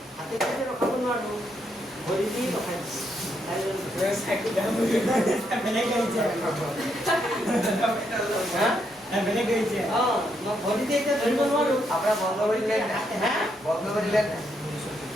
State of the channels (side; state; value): both; normal; correlation 0.77